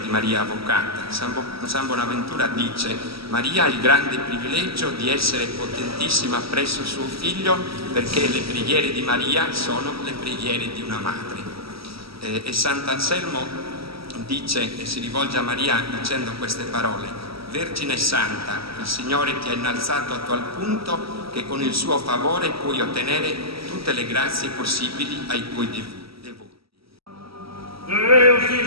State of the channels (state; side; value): late; left; 0.76 ms